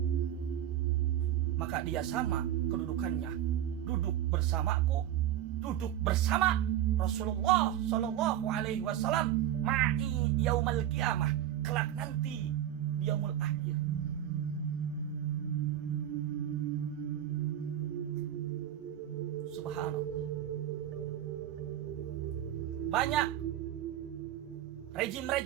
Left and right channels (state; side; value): quieter; left; 11.6 dB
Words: maka dia sama kedudukannya, duduk bersamaku, duduk bersama Rasulullah Shallallahu Alaihi Wasallam ma'i yaumal qiyamah, kelak nanti di yaumul akhir. Subhanallah. Banyak